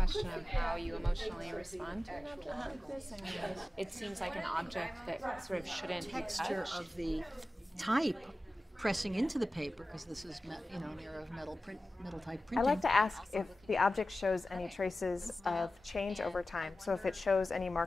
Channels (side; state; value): both; normal; correlation 0.95